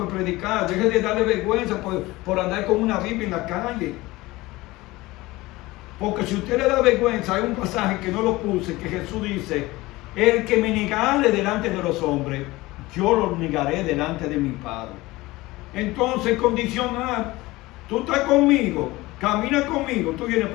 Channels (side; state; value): right; quieter; 19.9 dB